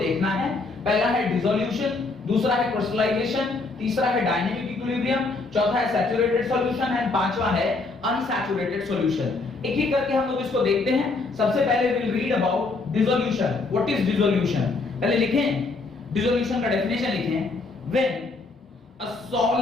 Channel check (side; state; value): right; quieter; 3.7 dB